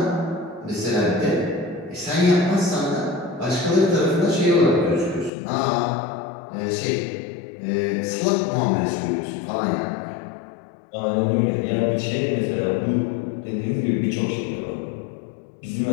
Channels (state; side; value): drops out; right; at 5.3 s